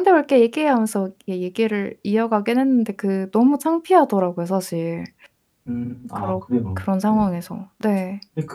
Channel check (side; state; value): both; identical; correlation 1.00